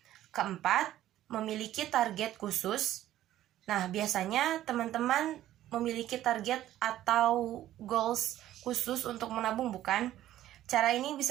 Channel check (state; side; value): quieter; left; 13.3 dB